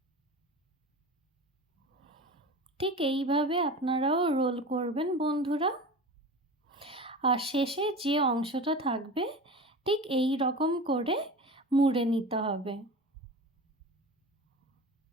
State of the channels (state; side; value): normal; both; correlation 0.32